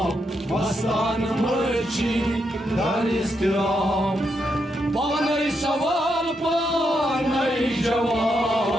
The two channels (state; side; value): normal; both; correlation 0.81